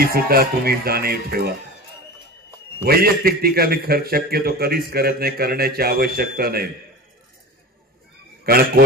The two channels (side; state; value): both; normal; correlation 0.32